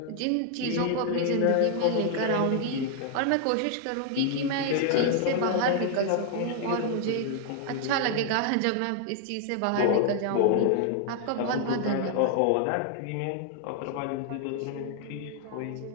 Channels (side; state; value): both; different; correlation 0.00